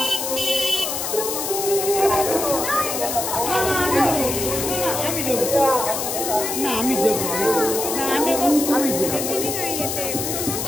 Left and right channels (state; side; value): noise; left; hiss, 3 dB below the sound